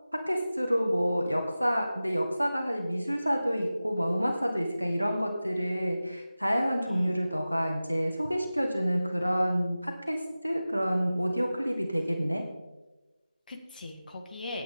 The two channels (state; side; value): inverted; both; correlation -0.96